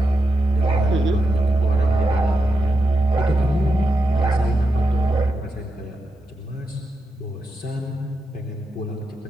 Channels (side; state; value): both; normal; correlation 0.86